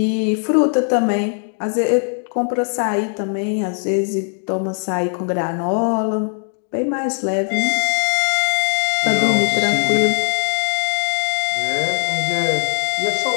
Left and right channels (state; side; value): silent; right; 55 dB below the other